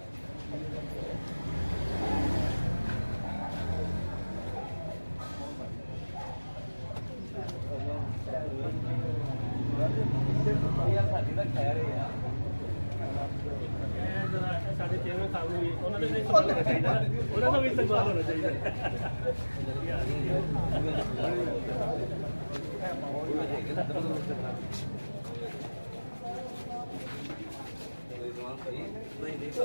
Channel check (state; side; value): inverted; both; correlation -1.00